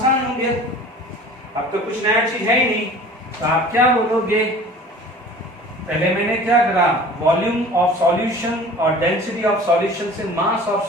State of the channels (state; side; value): normal; both; correlation 0.44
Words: हो गया, अब तो कुछ नया चीज है ही नहीं। तो आप क्या बोलोगे, पहले मैंने क्या करा, वॉल्यूम ऑफ सॉल्यूशन और डेंसिटी ऑफ सॉल्यूशन से मास ऑफ